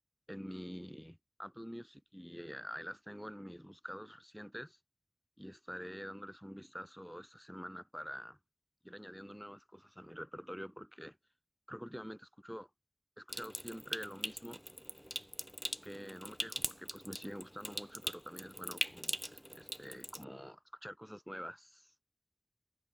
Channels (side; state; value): both; identical; correlation 1.00